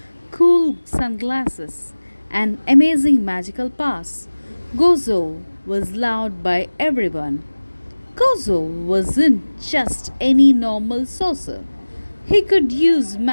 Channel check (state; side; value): inverted; both; correlation -1.00